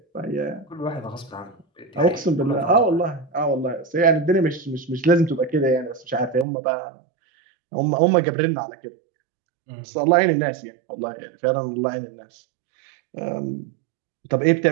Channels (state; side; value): drops out; left; at 6.5 s